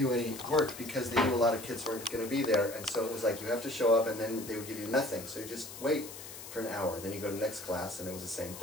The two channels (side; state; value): left; noise; hiss, 12 dB below the sound